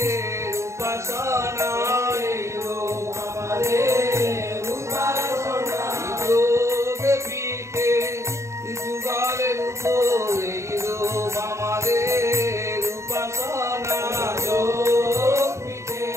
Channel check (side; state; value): left; late; 0.14 ms